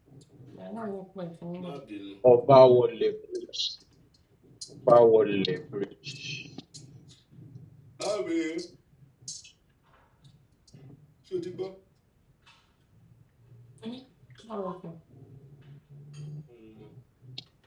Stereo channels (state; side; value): identical; both; correlation 1.00